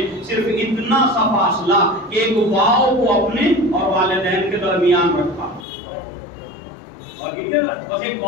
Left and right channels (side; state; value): right; drops out; at 5.7 s